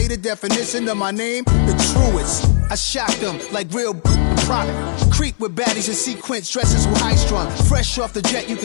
the definition of my name, the truest. I shocked them like real product. Creep with baddies in sequence, dresses with high strung. Fresh off the jet, you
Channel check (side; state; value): right; silent; digital silence